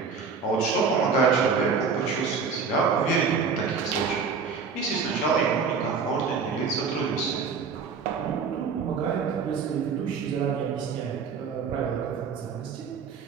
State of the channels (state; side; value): quieter; left; 5.5 dB